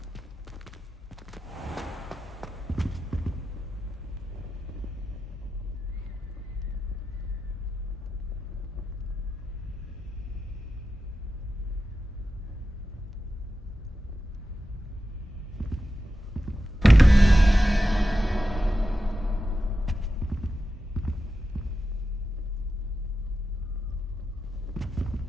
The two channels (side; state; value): both; normal; correlation 0.91